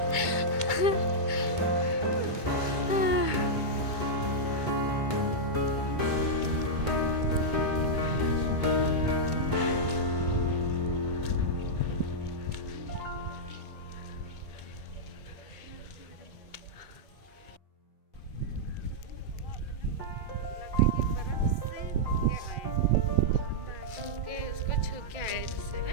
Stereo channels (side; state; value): right; late; 2.2 ms